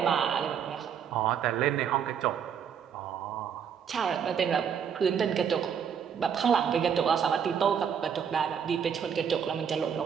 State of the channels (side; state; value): left; quieter; 7.7 dB